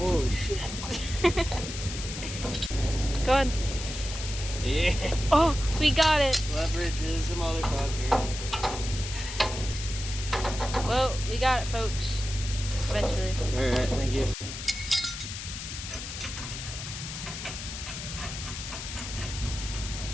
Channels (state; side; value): noise; left; hiss, 8 dB below the sound